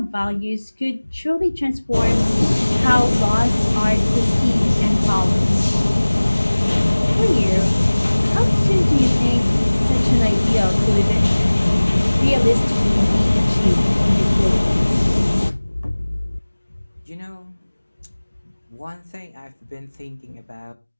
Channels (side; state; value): both; inverted; correlation -1.00